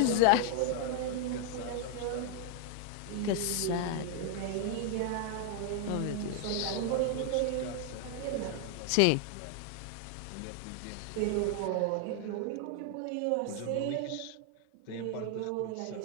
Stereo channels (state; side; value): different; both; correlation 0.00